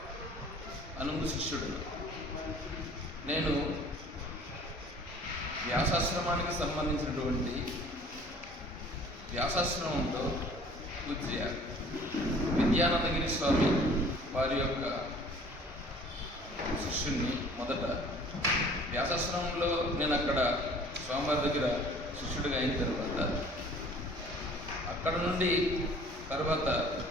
అనుంగు శిష్యుడు. నేను వ్యాసాశ్రమానికి సంబంధించినటువంటి వ్యాసాశ్రమంలో పూజ్య విద్యానందగిరి స్వామి వారి యొక్క శిష్యుణ్ణి. మొదట వ్యాసాశ్రమంలో నేను అక్కడ స్వామివారి దగ్గర శిష్యుడిగా అయిన తర్వాత అక్కడ నుండి తర్వాత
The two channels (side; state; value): both; normal; correlation 0.51